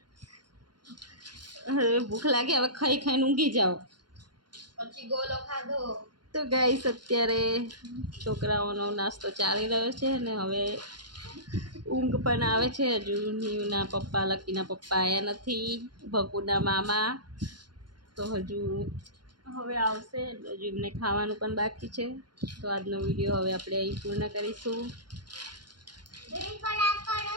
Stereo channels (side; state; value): left; late; 0.71 ms